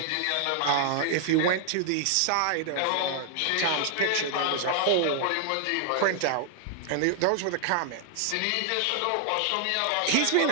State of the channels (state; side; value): different; both; correlation 0.00